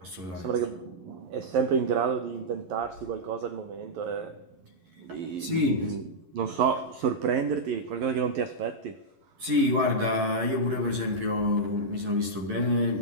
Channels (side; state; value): left; late; 11 ms